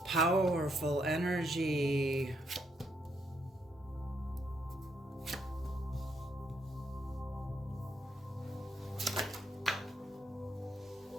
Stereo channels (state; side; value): normal; both; correlation 0.76